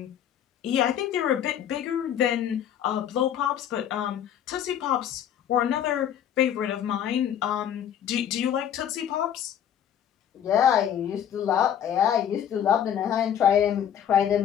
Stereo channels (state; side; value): quieter; right; 9.6 dB